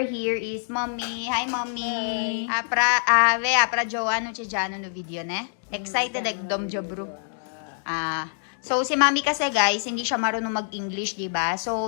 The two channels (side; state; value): right; silent; digital silence